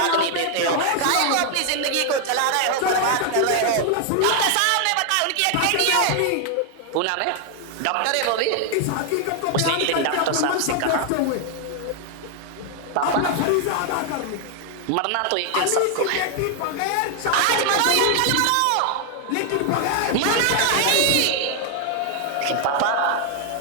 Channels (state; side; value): different; both; correlation 0.00